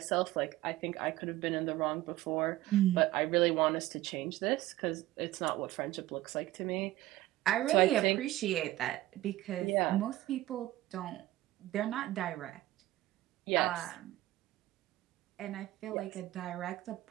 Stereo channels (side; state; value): left; quieter; 16.3 dB